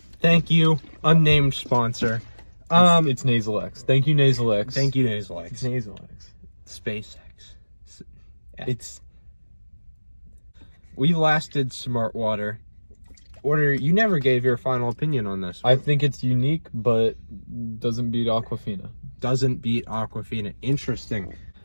Thank you, unnamed sponsor. It's Nasal X. Thank you, Nasal X. Thank you, Nasal It's X. Nasal X. SpaceX. It's We lasted Smart Water. Order, you never gave your final opinion on this. I think it's unique, but doesn't beat Aquafina. Doesn't beat Aquafina. Interesting.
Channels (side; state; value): both; inverted; correlation -1.00